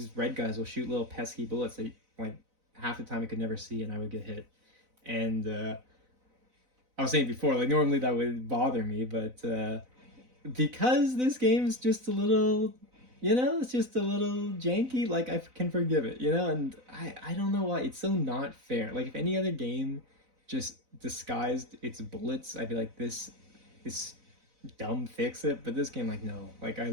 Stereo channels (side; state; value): left; late; 4.0 ms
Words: red guys will shoot little pesky bullets that like half the time I could never see, and I would get hit. And I was saying before, like normally that would bother me, but because this game is just a little, you know, it's just a little janky, like I can forgive it, you know. And I don't know why it's so not fair. Like if any other game just disguised its bullets, I'd be like, this is dumb, fix it. But this game, like, no, like I